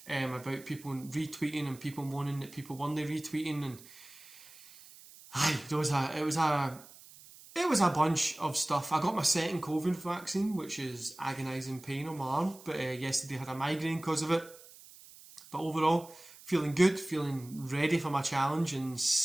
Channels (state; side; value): noise; right; hiss, 20 dB below the sound